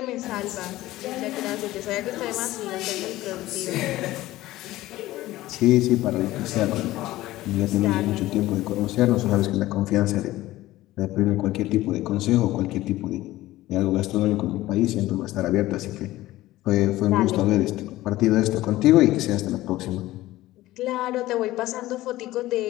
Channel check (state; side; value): quieter; right; 16.6 dB